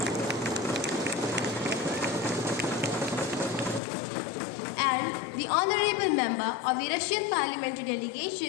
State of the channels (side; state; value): right; drops out; at 3.8 s